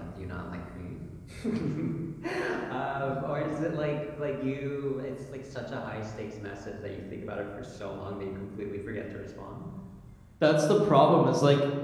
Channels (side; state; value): both; identical; correlation 1.00